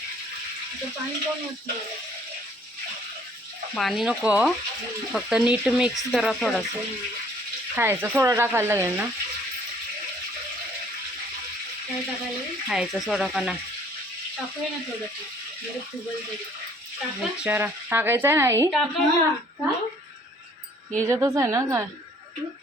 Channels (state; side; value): normal; both; correlation 0.58